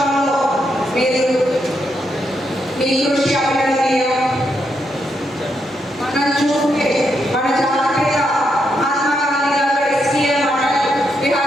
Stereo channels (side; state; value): both; normal; correlation 0.80